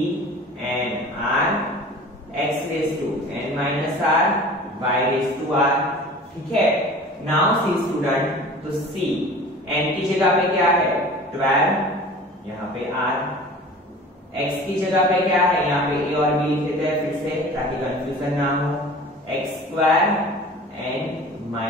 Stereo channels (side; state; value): both; normal; correlation 0.42